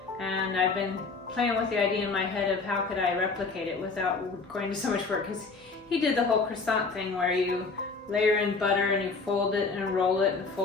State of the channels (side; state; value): right; quieter; 4.3 dB